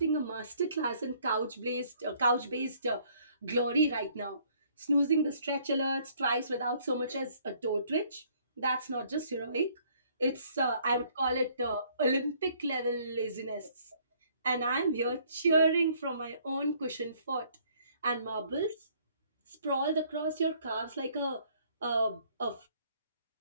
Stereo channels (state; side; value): inverted; both; correlation -0.62